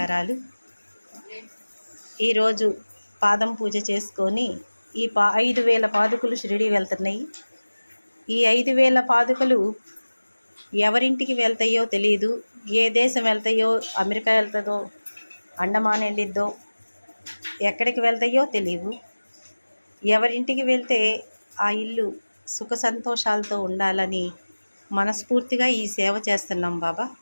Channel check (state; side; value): inverted; both; correlation -1.00